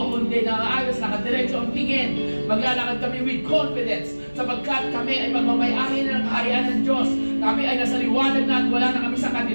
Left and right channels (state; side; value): inverted; both; correlation -1.00